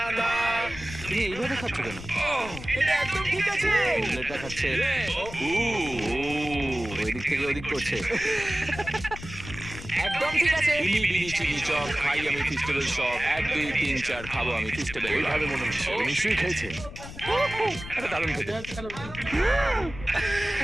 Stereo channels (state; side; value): noise; left; rumble, 12 dB below the sound